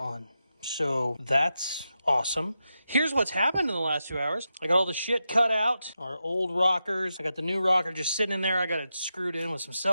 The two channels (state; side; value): inverted; both; correlation -0.88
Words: on. So that's awesome. Here's what's happened in the last 2 hours. I got all the shit cut out, our old rockers. I got the new rocker just sitting in there. I got it screwed in with some